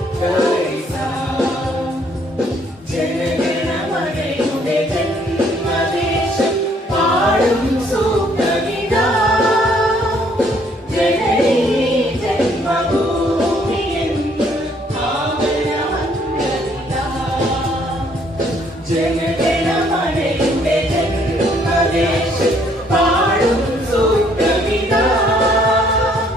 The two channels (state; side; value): normal; both; correlation 0.65